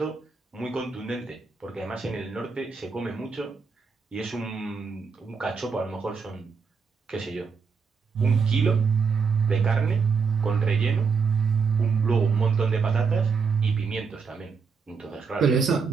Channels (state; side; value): quieter; left; 5.4 dB